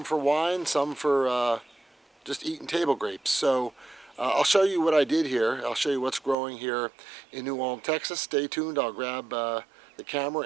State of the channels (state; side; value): drops out; left; at 6.4 s